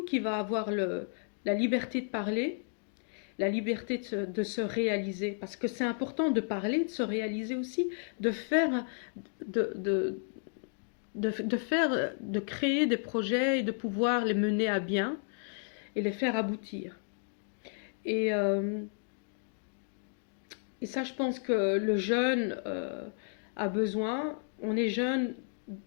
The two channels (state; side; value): silent; right; 56 dB below the other